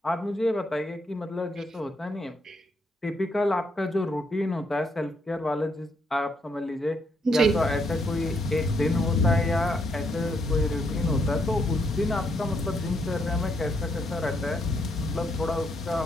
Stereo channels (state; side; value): normal; both; correlation 0.75